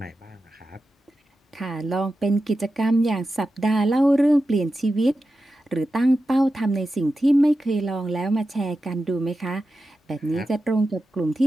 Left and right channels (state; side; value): normal; both; correlation 0.91